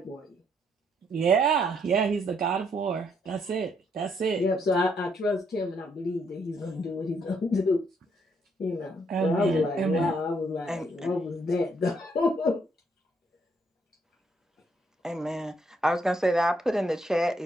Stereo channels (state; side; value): normal; both; correlation 0.72